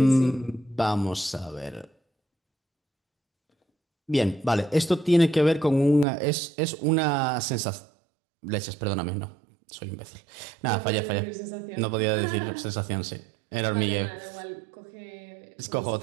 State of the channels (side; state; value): left; drops out; at 6.1 s